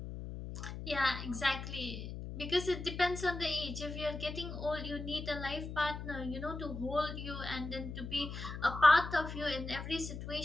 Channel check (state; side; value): noise; left; hum, 8 dB below the sound